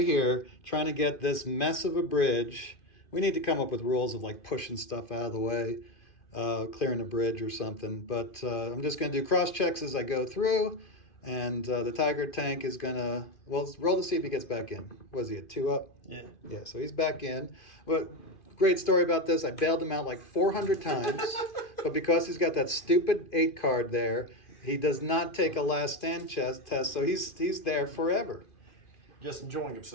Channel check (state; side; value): late; right; 2.5 ms